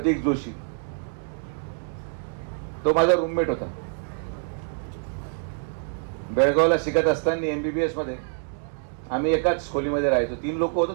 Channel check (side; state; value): left; silent; digital silence